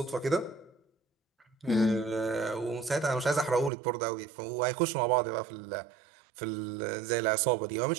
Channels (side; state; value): left; drops out; at 3.7 s